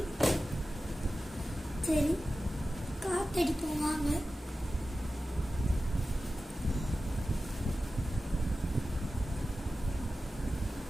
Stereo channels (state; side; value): normal; both; correlation 0.94